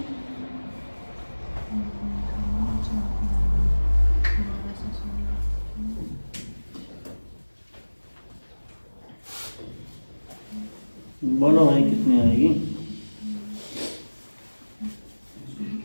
बोलो भाई कितनी आएगी?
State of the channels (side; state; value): both; inverted; correlation -1.00